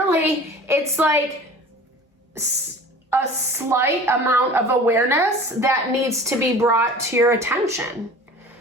it's like a slight amount of awareness that needs to be brought to your attention.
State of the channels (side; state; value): both; normal; correlation 0.42